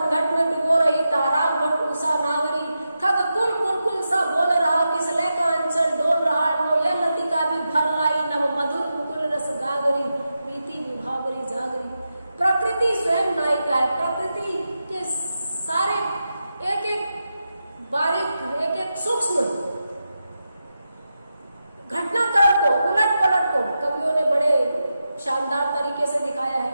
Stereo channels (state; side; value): inverted; both; correlation -0.89